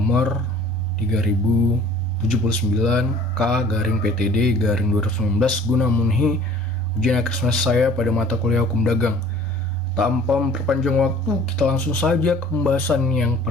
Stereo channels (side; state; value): both; normal; correlation 0.51